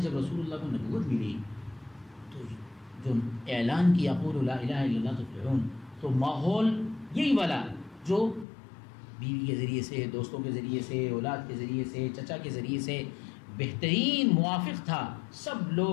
رسول اللہ کو نبوت ملی تو جو اعلان کیا قولوا لا الہ الا اللہ تفلحون، تو ماحول یہی والا جو بیوی کے ذریعے سے، دوستوں کے ذریعے سے، اولاد کے ذریعے سے، چچا کے ذریعے سے بہترین موافق تھا. سب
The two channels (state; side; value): drops out; right; at 8.5 s